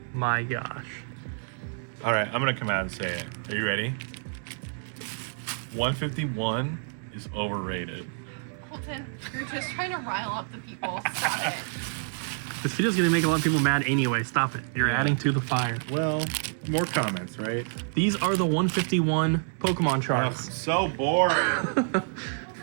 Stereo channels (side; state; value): left; silent; 59 dB below the other